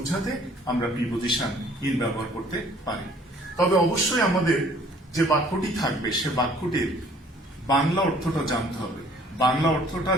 আমরা প্রিপোজিশন ইন ব্যবহার করতে পারি। তবে অবশ্যই আমাদের যে বাক্যটি থাকবে সে বাক্যটির বাংলা অর্থটা জানতে হবে। বাংলা অর্থটা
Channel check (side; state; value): both; normal; correlation 0.56